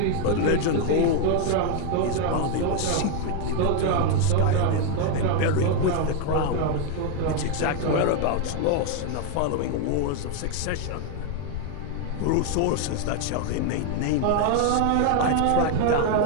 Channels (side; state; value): both; different; correlation 0.01